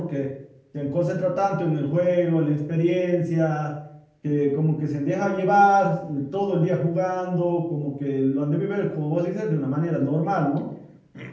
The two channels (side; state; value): both; identical; correlation 1.00